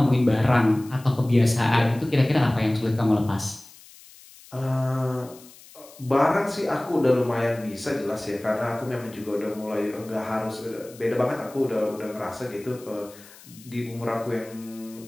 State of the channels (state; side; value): noise; left; hiss, 22 dB below the sound